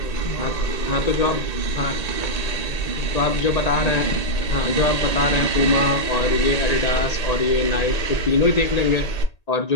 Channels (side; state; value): right; late; 1.8 ms